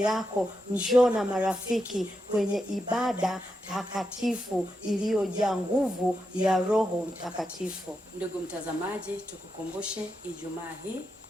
njoo na marafiki kwenye ibada takatifu iliyojaa nguvu ya Roho Mtakatifu. Ndugu mtazamaji, tukukumbushe Ijumaa hii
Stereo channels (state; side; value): normal; both; correlation 0.86